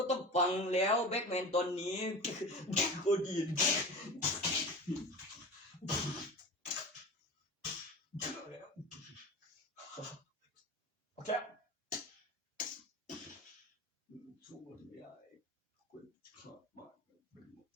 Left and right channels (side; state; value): both; normal; correlation 0.32